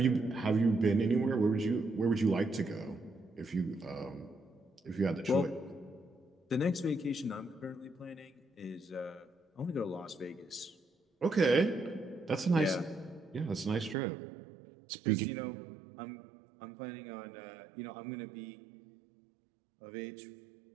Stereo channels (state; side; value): drops out; left; at 14.0 s